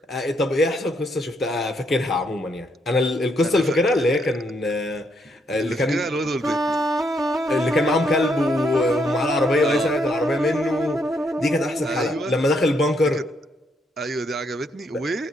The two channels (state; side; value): normal; both; correlation 0.74